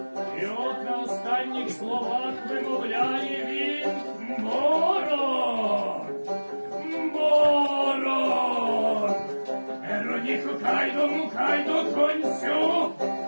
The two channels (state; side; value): inverted; both; correlation -1.00